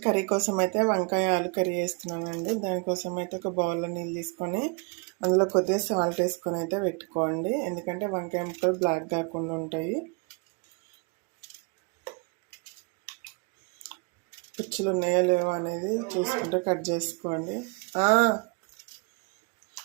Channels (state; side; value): quieter; left; 32.2 dB